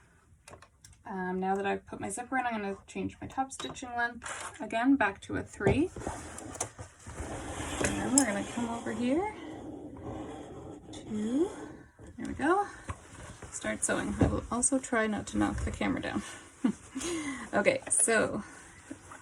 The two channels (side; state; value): both; identical; correlation 1.00